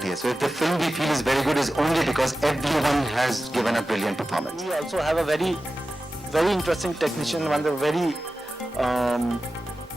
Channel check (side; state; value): both; normal; correlation 0.94